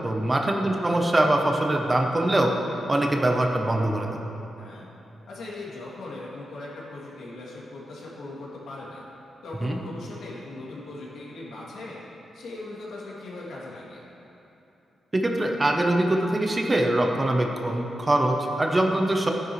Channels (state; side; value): normal; both; correlation 0.93